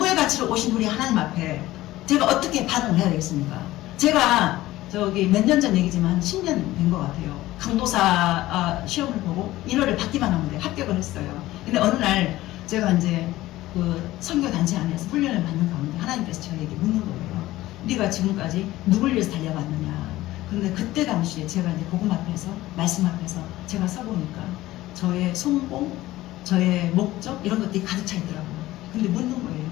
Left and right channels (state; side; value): quieter; right; 16.6 dB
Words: 가치로 오신 우리 하나님 앞에 제가 어떻게 반응을 해야 되겠습니까? 제가 저기 몇 년 전 얘기지만 한 10년 된 것 같아요. 강도사 시험을 보고 1월을 받기만 하면 돼. 합격을 했어요. 근데 어느 날 제가 이제 그 선교단체 안에서 훈련을 받는 가운데 하나님께서 저에게 묻는 거예요. 네가 지금까지 누굴 위해서 달려왔느냐. 그런데 그때 당시에 제가 이제 복음 앞에서 말씀 앞에서 제가 서보니까 저의 성공, 저의 목적 이런 것들이 가득 차 있더라고요. 근데 묻는 거예요.